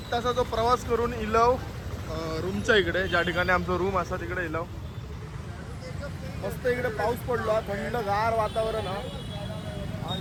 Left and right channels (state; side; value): identical; both; correlation 1.00